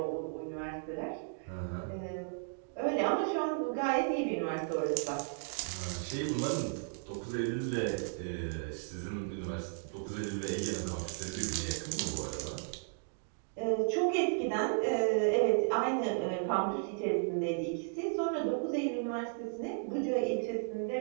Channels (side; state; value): left; silent; digital silence